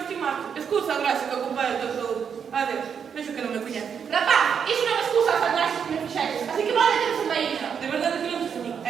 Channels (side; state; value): left; quieter; 7.2 dB